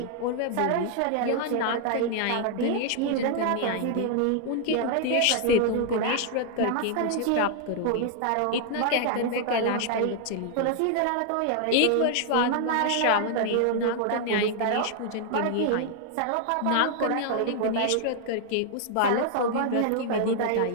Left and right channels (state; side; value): different; both; correlation 0.00